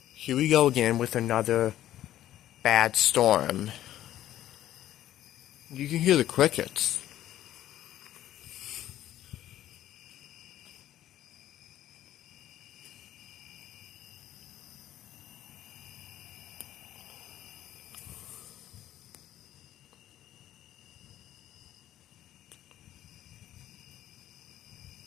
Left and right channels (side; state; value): right; quieter; 12.9 dB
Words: Here we go again with another bad storm. You can hear the crickets.